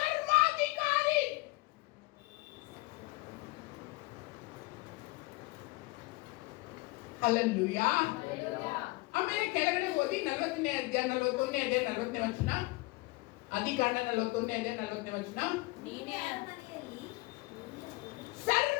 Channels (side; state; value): right; quieter; 23.0 dB